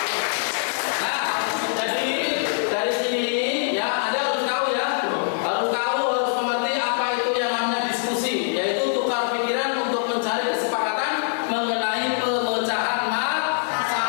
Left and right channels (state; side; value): silent; right; digital silence